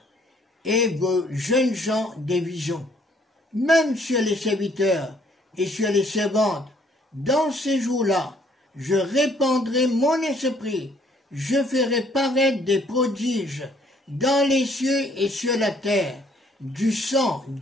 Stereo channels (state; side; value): normal; both; correlation 0.63